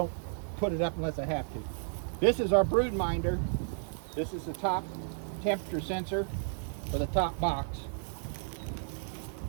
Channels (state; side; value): silent; left; 56 dB below the other